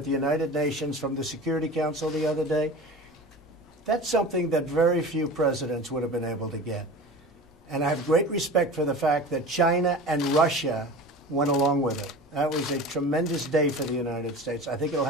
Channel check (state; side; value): normal; both; correlation 0.35